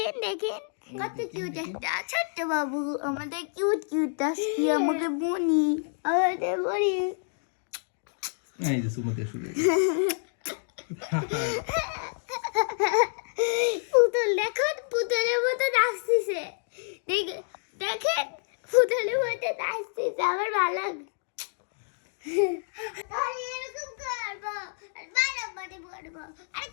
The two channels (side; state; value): right; silent; digital silence